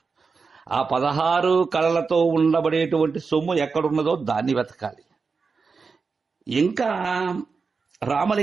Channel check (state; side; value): quieter; left; 4.9 dB